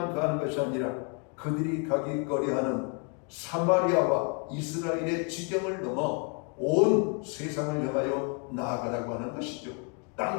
가는 것이 아니라 그들이 가기 꺼려하는 사마리아와 이스라엘의 지경을 넘어 온 세상을 향하여 나아가라고 하는 것이죠.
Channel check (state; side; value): quieter; right; 38.1 dB